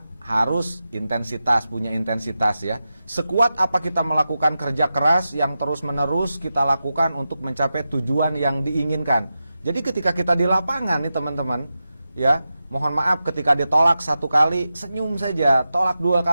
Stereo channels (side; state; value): both; inverted; correlation -0.91